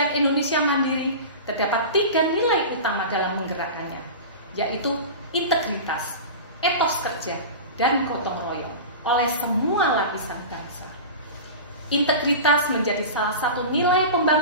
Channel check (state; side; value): inverted; both; correlation -0.30